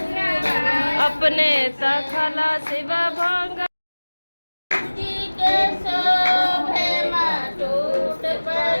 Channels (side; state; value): both; inverted; correlation -1.00